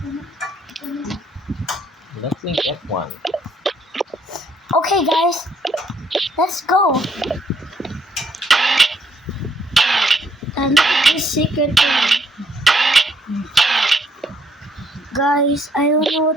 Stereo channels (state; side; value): normal; both; correlation 0.69